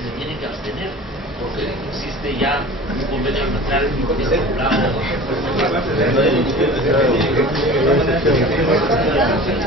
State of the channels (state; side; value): normal; both; correlation 0.39